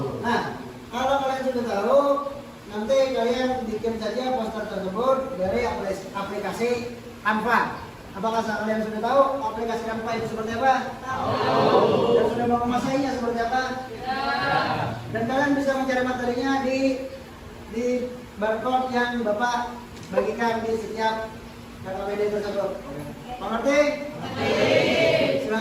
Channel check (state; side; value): identical; both; correlation 1.00